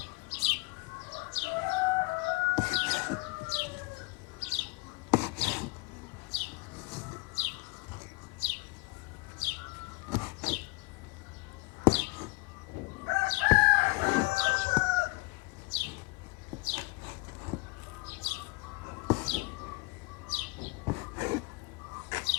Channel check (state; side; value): quieter; right; 25.9 dB